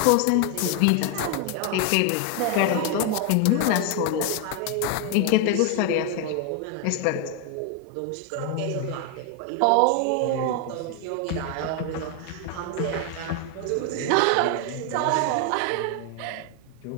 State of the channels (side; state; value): both; different; correlation 0.01